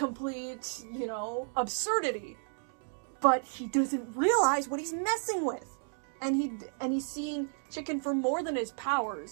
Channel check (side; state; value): left; silent; digital silence